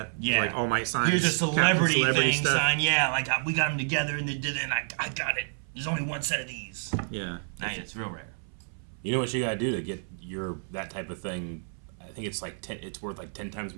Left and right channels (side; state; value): left; silent; 59 dB below the other